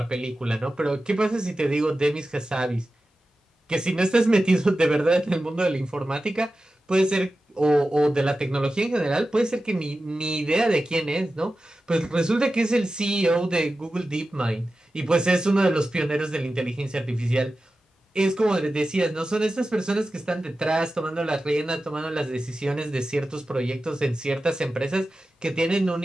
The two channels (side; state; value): both; normal; correlation 0.93